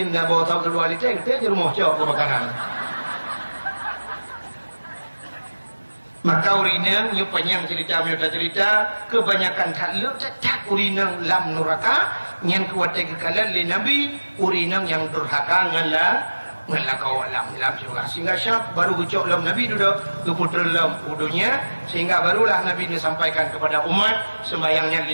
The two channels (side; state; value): both; inverted; correlation -1.00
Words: dah bawa tahu kedua liter, kita di rumah jauh kebakaran. Maka urinang, nyu panjang cerita, kebanyakan tak urinang lam neraka, yang kuat kekalan le Nabi, urinang yang durhaka ngalah kau lam surga. Sehingga syab baru ucap lam Nabi duduk keputra lam udunya, sehingga barulah Nabi ini sampaikan kepada umat sembayangnya